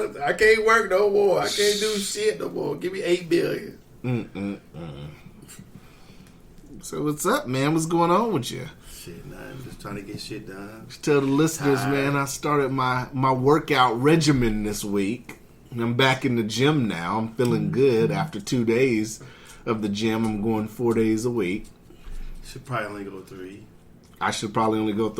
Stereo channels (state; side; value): identical; both; correlation 1.00